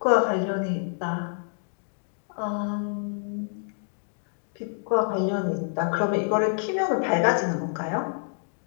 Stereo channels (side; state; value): right; silent; 60 dB below the other